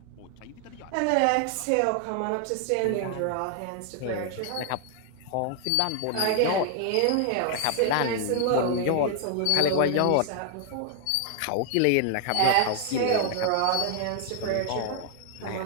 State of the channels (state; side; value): different; both; correlation 0.00